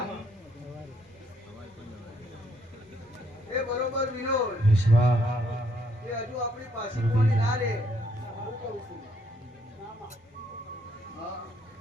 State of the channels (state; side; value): normal; both; correlation 0.70